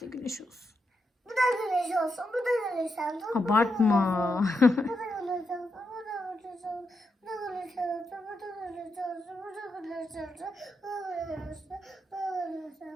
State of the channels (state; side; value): normal; both; correlation 0.84